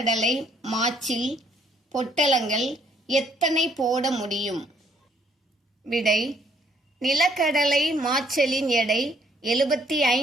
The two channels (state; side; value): normal; both; correlation 0.66